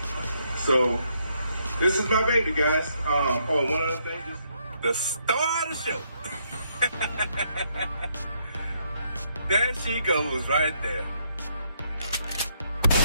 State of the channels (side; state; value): both; inverted; correlation -0.74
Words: So, this is my baby, guys. One other thing, the star of the show. There she goes right there.